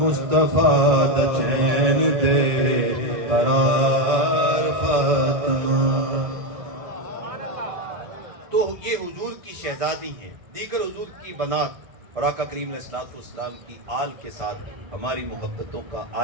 دا چین تے قرار فاطمہ. تو یہ حضور کی شہزادی ہیں. دیگر حضور کی بنات اور آقا کریم علیہ السلام کی آل کے ساتھ ہماری محبتوں کا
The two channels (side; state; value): left; late; 1.6 ms